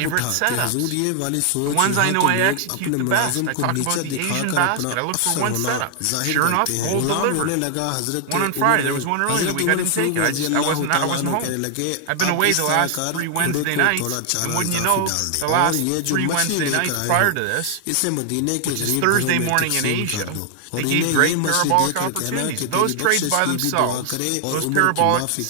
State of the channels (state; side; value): different; both; correlation 0.00